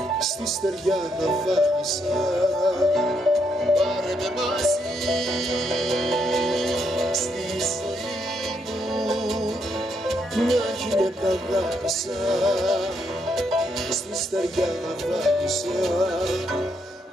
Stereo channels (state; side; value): normal; both; correlation 0.76